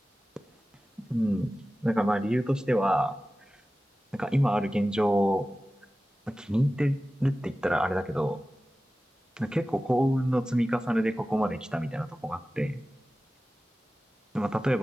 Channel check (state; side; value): normal; both; correlation 0.96